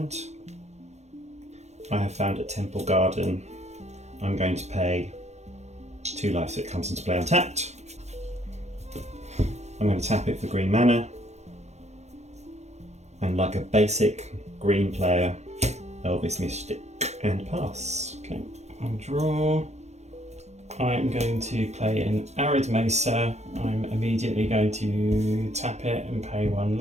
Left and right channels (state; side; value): late; left; 0.32 ms